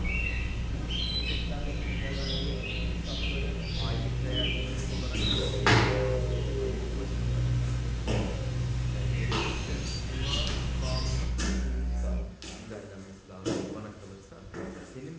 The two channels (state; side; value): identical; both; correlation 1.00